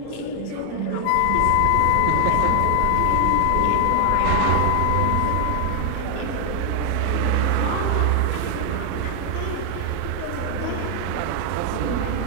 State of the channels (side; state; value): both; different; correlation 0.00